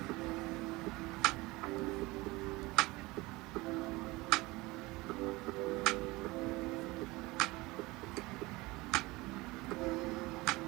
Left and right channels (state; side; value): quieter; left; 21.9 dB